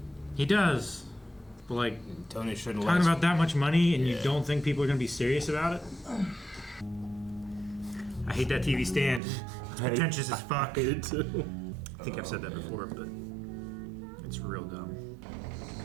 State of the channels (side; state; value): left; drops out; at 9.2 s